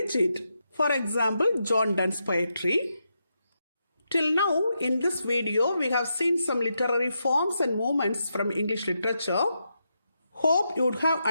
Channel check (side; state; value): both; inverted; correlation -0.84